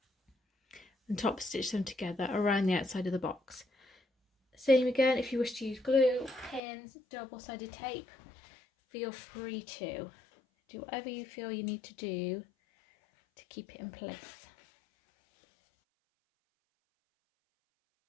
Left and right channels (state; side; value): drops out; right; at 6.6 s